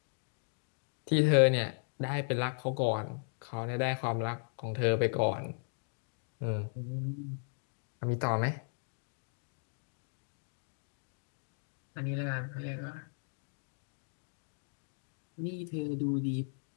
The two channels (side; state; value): right; silent; digital silence